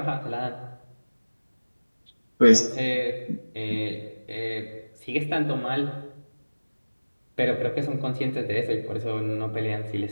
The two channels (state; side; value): inverted; both; correlation -1.00